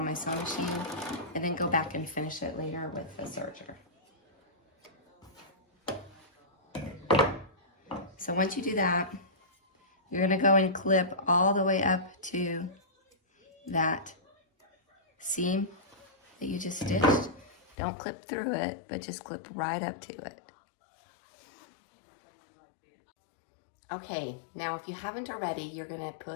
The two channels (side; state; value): right; drops out; at 17.8 s